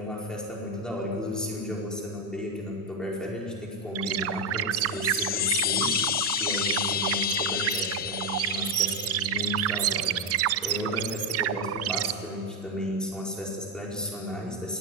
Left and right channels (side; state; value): both; normal; correlation 0.07